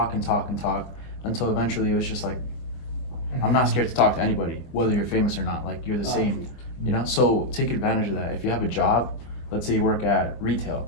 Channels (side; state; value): right; late; 24 ms